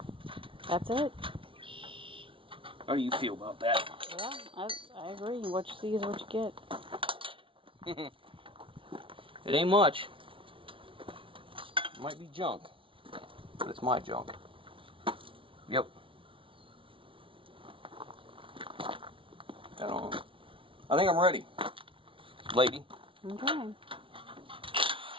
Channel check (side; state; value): left; late; 0.25 ms